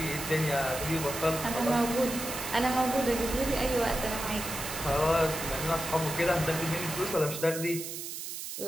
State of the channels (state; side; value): noise; right; hiss, 7 dB below the sound